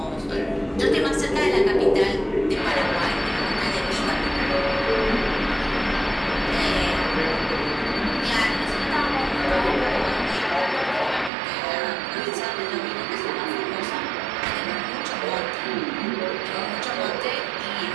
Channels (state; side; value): drops out; left; at 11.3 s